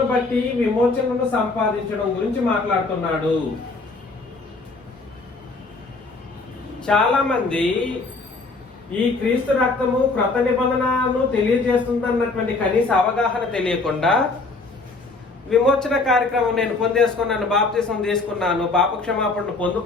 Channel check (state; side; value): quieter; right; 3.6 dB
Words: బట్టి విమోచనను సంపాదించడం గురించి మాట్లాడుతున్నాడు. చాలా మంది ఈ క్రీస్తు రక్తము క్రొత్త నిబంధనను తెలియజేస్తుందన్నటువంటి కనీస అవగాహన తెలియకుండా విమోచన కార్యక్రమం నేను పొందేసుకున్నాను, బాప్తిసం తీసుకున్నాను, పాప క్షమాపణను